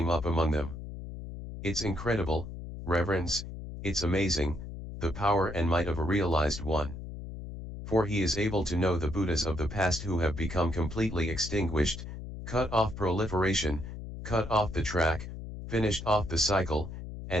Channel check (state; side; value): noise; left; hum, 9 dB below the sound